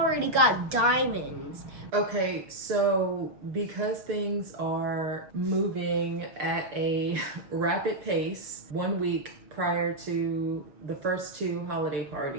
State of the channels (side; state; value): left; late; 6.2 ms